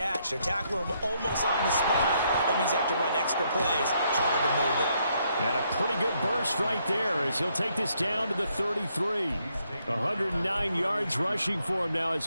They're tackling them almost on the spot. That means they have to run extra plays, harder to move it. And a pretty good burst right there as he'll take this down to the 33. 109 yards rushing for him now as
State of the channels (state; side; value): inverted; both; correlation -0.74